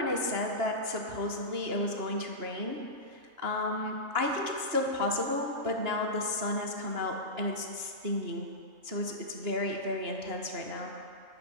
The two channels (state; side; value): late; left; 2.9 ms